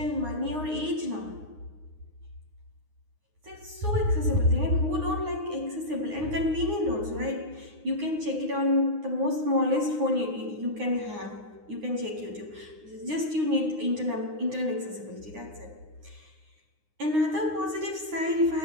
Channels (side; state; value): left; late; 9.7 ms